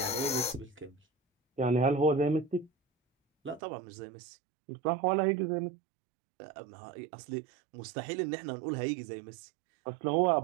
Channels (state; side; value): drops out; left; at 3.6 s